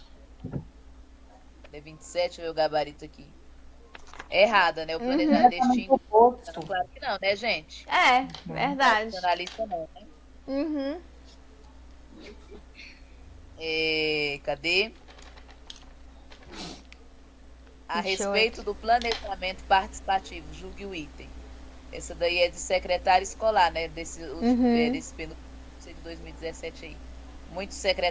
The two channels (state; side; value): identical; both; correlation 1.00